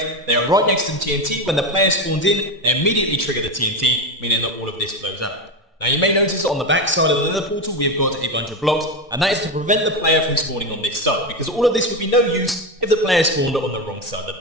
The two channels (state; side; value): normal; both; correlation 0.15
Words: They are right next to the TNT. When the player spawns in, they immediately trigger the TNT, meaning that all of this blows up. Now you may notice on the back side of the nether portal we have got a bunch of blocks, and that is to prevent the player from spawning on this side, because all of this would be no use if the player spawned on the wrong side